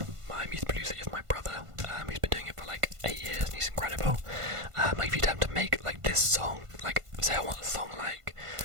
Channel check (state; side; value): late; left; 1.5 ms